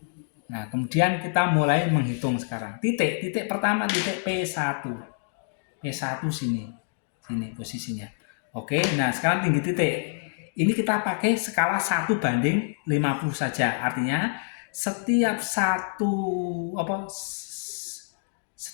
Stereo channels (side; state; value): right; silent; digital silence